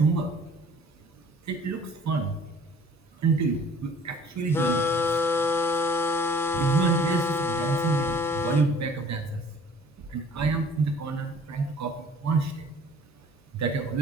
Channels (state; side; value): normal; both; correlation 0.51